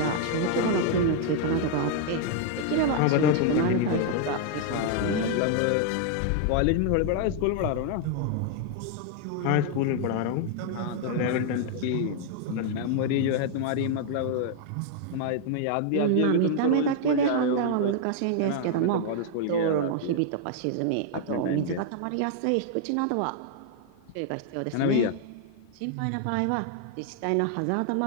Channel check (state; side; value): different; both; correlation 0.00